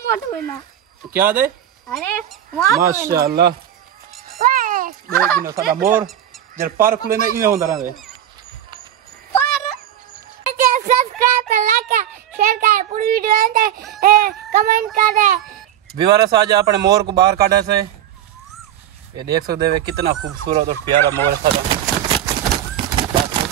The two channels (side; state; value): left; quieter; 11.1 dB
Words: मत बोलना क्या दे अरे माशाअल्लाह देख नो साडा मोर जर पार खुले ने इने होंदा रहे सब्सक्राइब कर लाइक कर शेयर कर पूरी वीडियो अंदर कमेंट कर दे विवारस आज अपने मोर को बाहर काढ़े से ये देख सकते हो कितना खूबसूरत और प्यारा मोर है